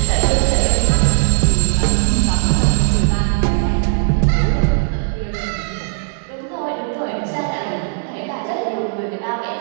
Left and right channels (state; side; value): silent; left; digital silence